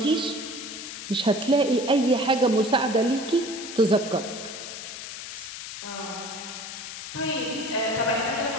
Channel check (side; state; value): left; noise; hiss, 9 dB below the sound